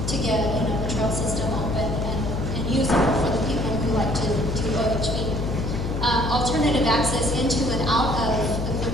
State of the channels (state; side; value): noise; left; hum, 2 dB below the sound